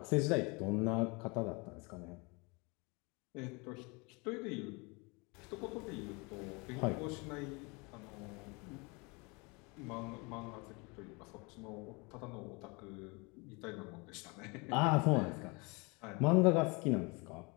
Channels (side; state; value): right; quieter; 28.7 dB